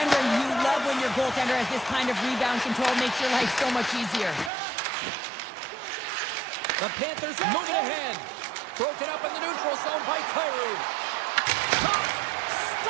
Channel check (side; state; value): left; drops out; at 4.5 s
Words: you love when your goaltender has this kind of rebound control. Makes your life so much easier. The Panthers moving ahead. Broken up in the neutral zone by Kyrou.